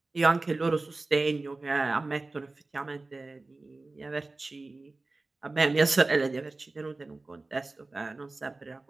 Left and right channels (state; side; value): quieter; left; 3.3 dB